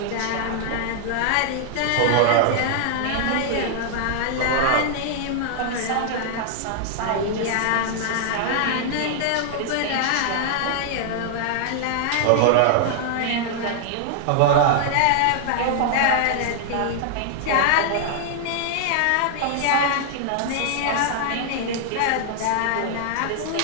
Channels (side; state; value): both; different; correlation 0.00